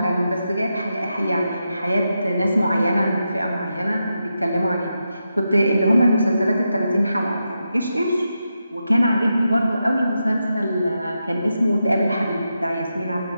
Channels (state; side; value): inverted; both; correlation -0.86